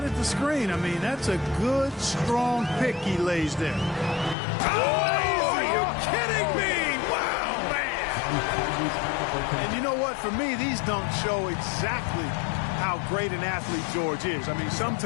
the screen. I mean, that's a good, strong pick he lays there. Oh, are you kidding me? Wow, man. And you know what? For me, these don't show exactly how great an athlete George is. I mean,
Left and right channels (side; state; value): right; drops out; at 4.4 s